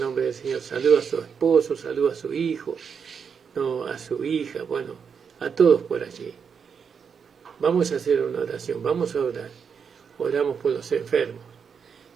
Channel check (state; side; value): quieter; left; 6.5 dB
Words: nombre del Señor. Saludo a su esposo, saludo a su hijo, no, a su hija, bueno, a todos por allí. Vamos a hacer una oración, vamos a orar. Oramos por los enfermos.